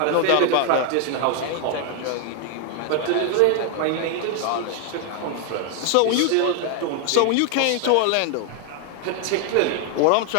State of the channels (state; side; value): different; both; correlation 0.00